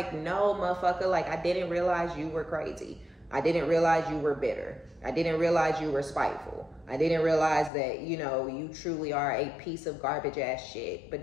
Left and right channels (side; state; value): right; drops out; at 7.7 s